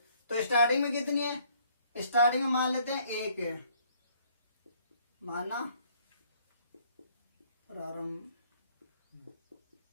तो स्टार्टिंग में कितनी है, स्टार्टिंग में मान लेते हैं 1 है, माना प्रारंभ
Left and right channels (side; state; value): both; inverted; correlation -0.63